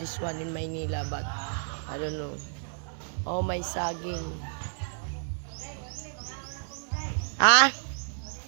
one in Maynila, but I don't know. Oh, may saging. Ha?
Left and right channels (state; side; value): silent; left; 58 dB below the other